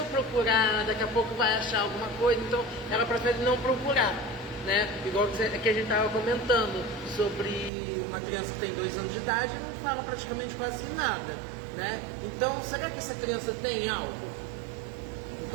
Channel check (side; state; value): left; drops out; at 7.7 s